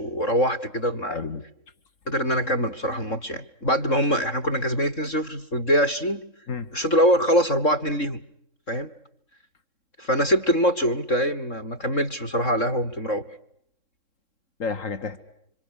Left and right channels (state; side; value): late; right; 3.7 ms